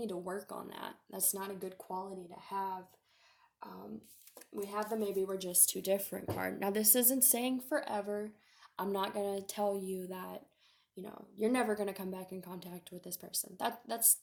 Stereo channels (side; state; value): both; identical; correlation 1.00